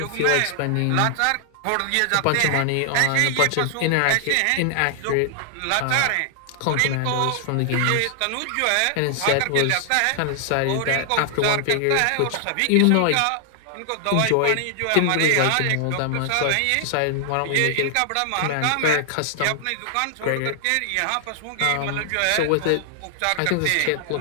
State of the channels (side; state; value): both; different; correlation 0.00